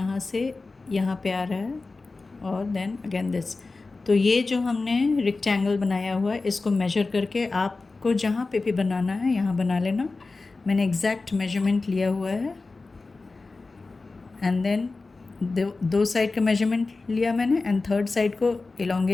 से यहाँ पे आ रहा है, और देन अगेन दिस। तो ये जो हमने रेक्टेंगल बनाया हुआ है, इसको मेजर करके आपको जहाँ पे भी बनाना है यहाँ बना लेना। मैंने एग्जैक्ट मेजरमेंट लिया हुआ है। एंड देन दो साइड का मेजरमेंट लिया मैंने, एंड थर्ड साइड को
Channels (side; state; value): right; quieter; 3.7 dB